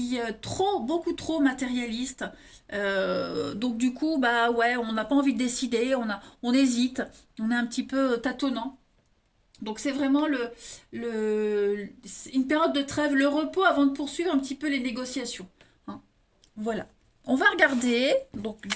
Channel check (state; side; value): identical; both; correlation 1.00